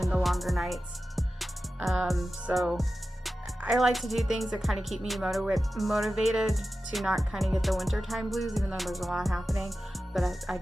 the longer nights. So I like to do things that kind of keep me motivated to not kind of get the wintertime blues, even though there's a lot happening, but I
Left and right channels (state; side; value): normal; both; correlation 0.93